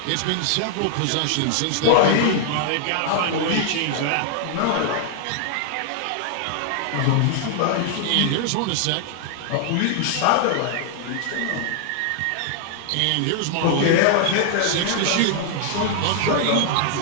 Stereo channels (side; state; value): both; different; correlation 0.00